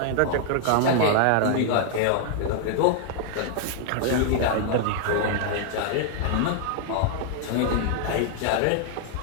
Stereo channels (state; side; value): different; both; correlation 0.00